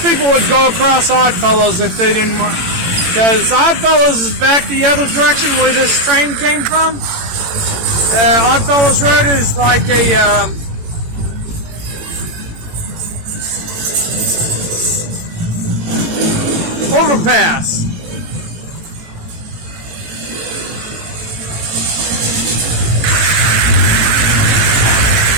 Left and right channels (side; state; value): left; late; 18 ms